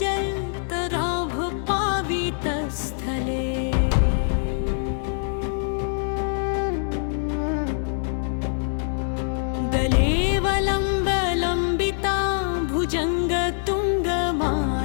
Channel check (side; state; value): right; silent; digital silence